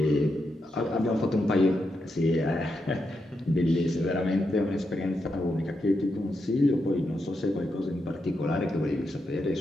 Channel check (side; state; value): both; normal; correlation 0.84